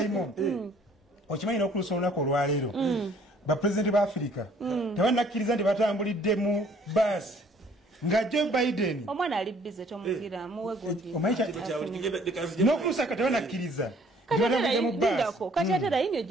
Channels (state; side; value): normal; both; correlation 0.59